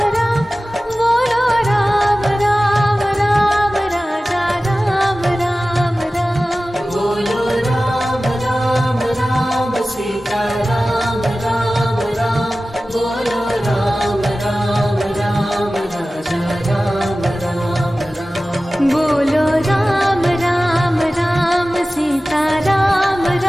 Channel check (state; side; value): normal; both; correlation 0.96